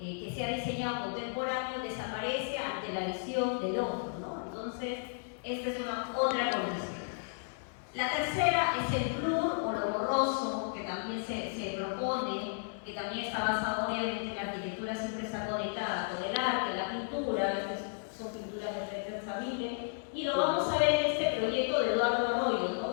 se ha diseñado contemporáneo desaparece ante la visión del otro, ¿no? Entonces, esta es otra condición. La tercera es el blur o lo borroso, que también se propone, que también está basado obviamente en la arquitectura, siempre está conectada con el arte, la pintura. Estas son pinturas de Peter Saville, y lo vamos a ver en este proyecto de Eduardo Arroyo, ¿no?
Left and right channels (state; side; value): silent; right; 55 dB below the other